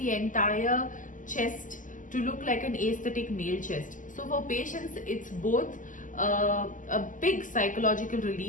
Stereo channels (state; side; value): late; right; 0.38 ms